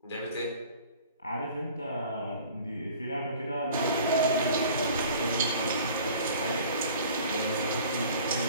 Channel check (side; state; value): both; inverted; correlation -0.47